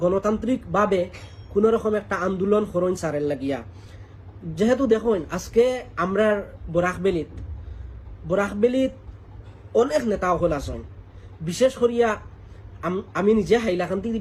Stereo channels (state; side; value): identical; both; correlation 1.00